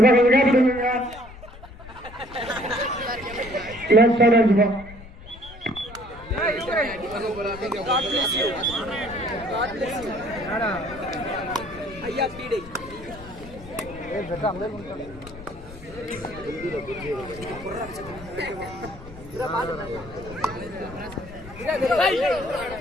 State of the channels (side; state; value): left; noise; rumble, 16 dB below the sound